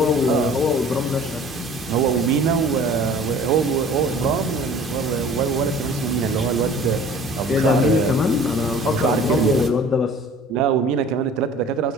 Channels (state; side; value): normal; both; correlation 0.47